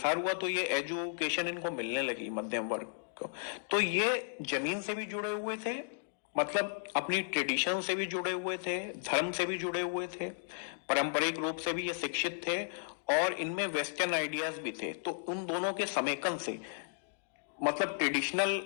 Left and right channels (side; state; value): right; silent; digital silence